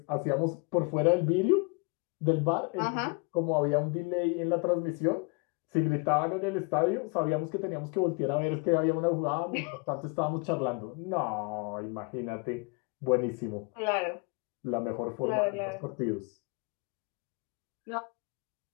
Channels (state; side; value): quieter; right; 32.2 dB